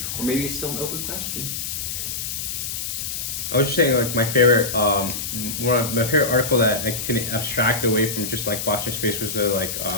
or maybe it's still an open question. I was just saying, like, my favorite article that I can abstract away from just like watching space was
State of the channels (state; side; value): noise; left; hiss, 4 dB below the sound